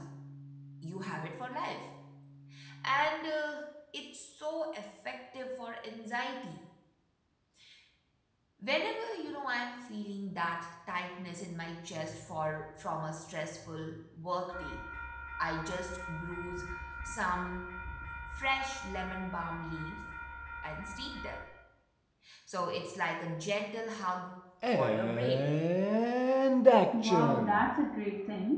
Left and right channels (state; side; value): identical; both; correlation 1.00